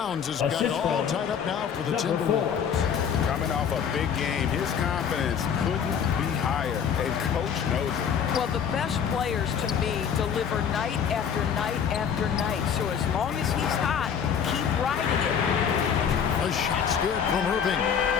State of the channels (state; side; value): quieter; right; 7.6 dB